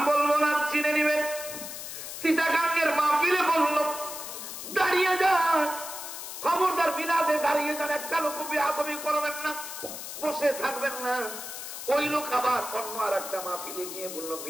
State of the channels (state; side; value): noise; left; hiss, 9 dB below the sound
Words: বলবো না, চিনে নিবেন। চিটাগাঙ্গের মাহফিলে বলল দাঁড়িয়ে যান, খবরদার মিলাদে দাঁড়িয়ে যান, একটা লোক বেয়াদবি করবেন না, বসে থাকবেন না। ওই লোক আবার অন্য আর একটা মাহফিলে গিয়ে বলল